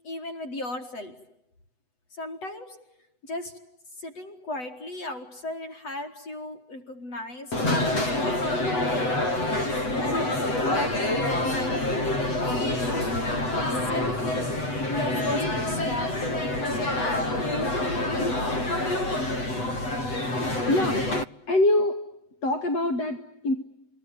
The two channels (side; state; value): right; late; 8.0 ms